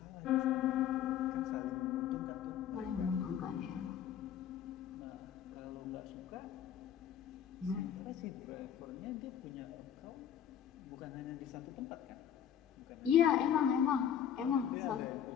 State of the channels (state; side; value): quieter; right; 9.4 dB